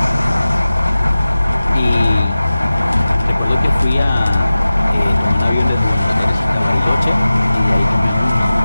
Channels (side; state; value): both; inverted; correlation -0.96